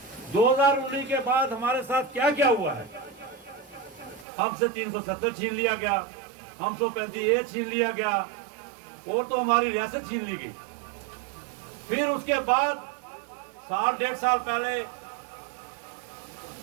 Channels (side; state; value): left; drops out; at 4.2 s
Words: 2019 के बाद हमारे साथ क्या क्या हुआ है? हमसे 370 छीन लिया गया, हम 135A छीन लिया गया, और तो हमारी रियासत छीन ली गई। फिर उसके बाद साल डेढ़ साल पहले